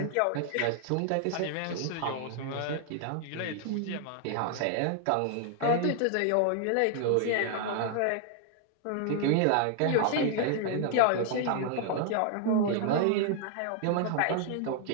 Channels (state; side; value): different; both; correlation 0.00